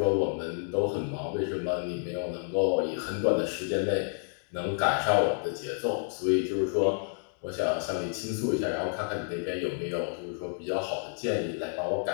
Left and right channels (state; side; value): silent; right; digital silence